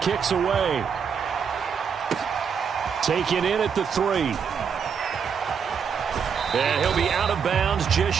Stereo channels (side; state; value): left; quieter; 6.8 dB